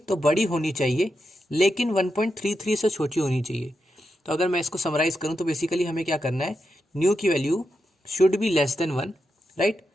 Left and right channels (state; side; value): normal; both; correlation 0.86